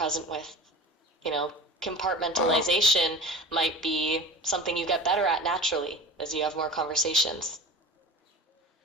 with. You know, Uh-huh. compartmentalization might be something you get better at naturally as you have more conversations.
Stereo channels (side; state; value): both; normal; correlation 0.36